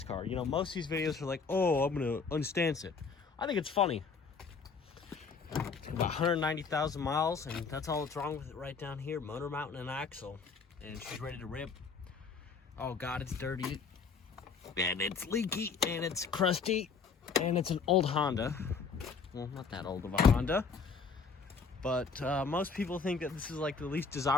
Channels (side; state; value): right; quieter; 5.2 dB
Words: car. You know, most of these videos are like, oh, I'm gonna unstance it. I think it's funny. About 190,000 miles, and that's all that's wrong with it right down here. Motor mount and an axle, and she's ready to rip. Oh god, it's dirty, and it's leaky, and it's crusty, and it's an old Honda. Well, not that old of a Honda, but most people think that this is like the least